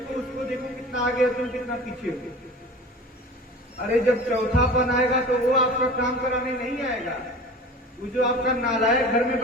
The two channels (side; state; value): both; normal; correlation 0.38